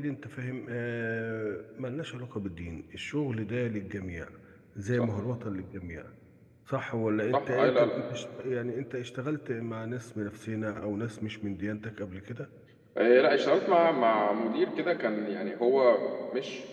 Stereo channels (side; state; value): both; identical; correlation 1.00